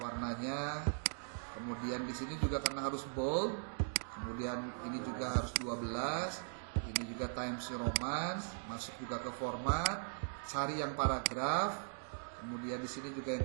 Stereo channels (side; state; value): left; silent; digital silence